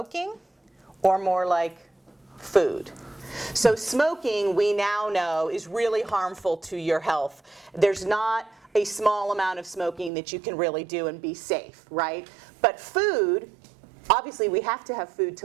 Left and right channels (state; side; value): drops out; left; at 10.1 s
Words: or more like food? So smoking, we now know, is really harmful to your health. There's not a small amount of smoking that you can really do and be safe, right? But food, obviously we have to have food